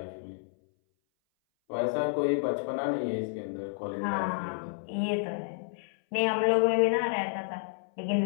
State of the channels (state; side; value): silent; right; 58 dB below the other